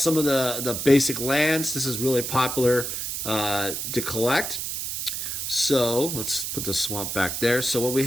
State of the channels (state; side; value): noise; right; hiss, 4 dB below the sound